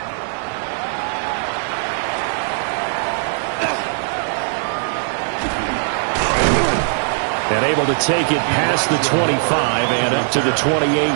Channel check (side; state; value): left; silent; digital silence